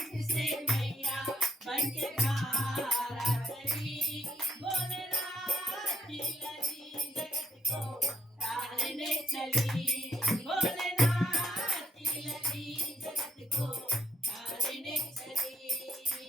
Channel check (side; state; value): both; normal; correlation 0.74